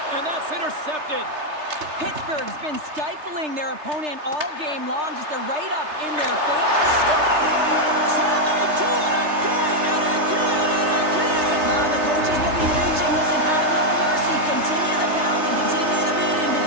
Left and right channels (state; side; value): late; left; 3.3 ms